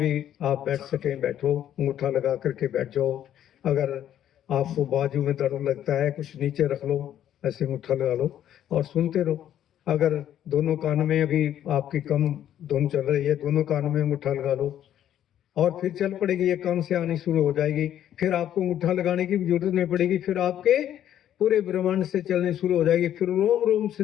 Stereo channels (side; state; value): right; quieter; 10.9 dB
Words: आप बैठ सकें बैठो, अंगूठा लगा करके बैठ जाओ। अगर आपको बाजू में दर्द लगता है, कुछ नीचे रख लो, ऐसे अंगूठा लगा लो और सुनते रहो। अगर दोनों कान में अभी आपकी कम धुन चल रही है, दोनों कान में अंगूठा लगा लो और फिर चल पड़ेगी, ये कान से आनी शुरू हो जाएगी। फिर आपको अंगूठा लगाने की जरूरत नहीं पड़ेगी, फिर आपके पूरे ब्रह्मांड से चलनी शुरू हो जाएगी, फिर रोम रोम से